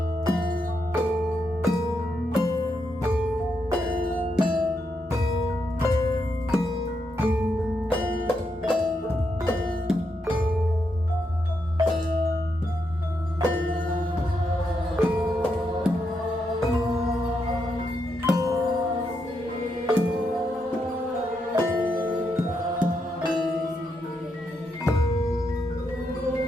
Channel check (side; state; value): both; normal; correlation 0.82